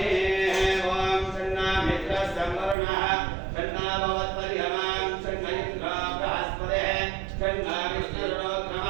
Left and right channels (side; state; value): left; drops out; at 2.8 s